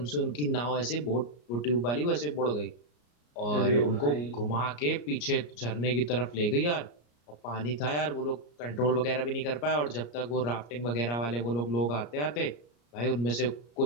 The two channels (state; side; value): late; right; 34 ms